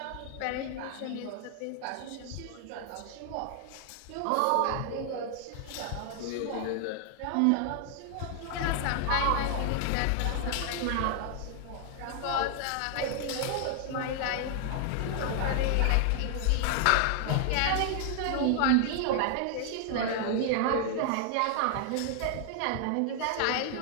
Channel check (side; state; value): both; different; correlation 0.00